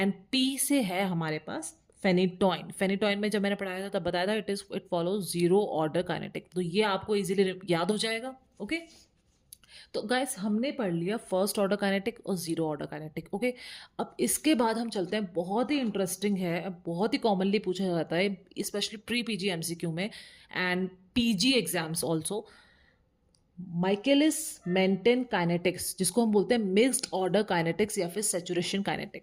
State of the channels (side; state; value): both; identical; correlation 1.00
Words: P से है हमारे पास फेनिटॉइन। फेनिटॉइन में जब मैंने पढ़ाया था तब बताया था it follows zero order kinetic, तो ये आपको इजीली याद हो जाएगा। ओके, तो गाइस हमने पढ़ लिया फर्स्ट ऑर्डर काइनेटिक और जीरो ऑर्डर काइनेटिक। ओके, अब इसके बाद हम चलते हैं, बहुत ही इंटरेस्टिंग है, बहुत ही कॉमनली पूछा जाता है स्पेशली प्री पीजी एमसीक्यू में and PG exams also, Michaelis Menten kinetics, जिसको हम बोलते हैं मिक्स्ड ऑर्डर काइनेटिक्स या फिर सैचुरेशन